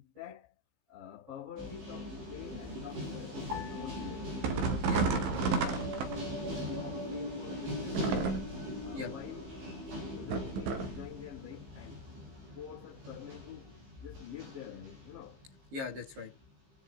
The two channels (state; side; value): late; left; 15 ms